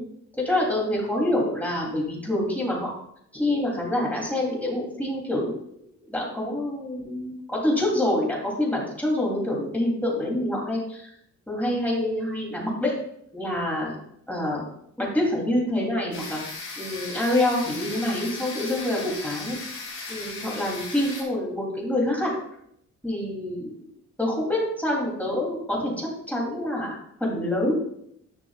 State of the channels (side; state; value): both; normal; correlation 0.57